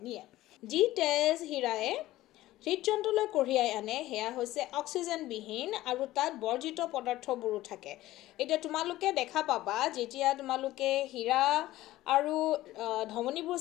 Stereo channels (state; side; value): quieter; right; 16.1 dB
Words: নিয়ে। যি তেজ হীৰাই হৃদযন্ত্ৰলৈ কঢ়িয়াই আনে সেয়া হৈছে অক্সিজেনবিহীন আৰু তাত বৰ্জিত পদাৰ্থবোৰো থাকে। এতিয়া তোমালোকে দেখা পাবা, যেতিয়া তোমালোকে হীৰা আৰু ধমনীবোৰ